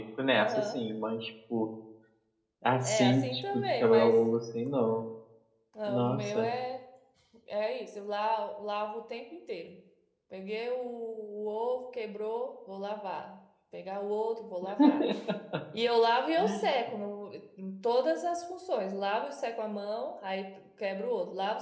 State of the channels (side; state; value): both; identical; correlation 1.00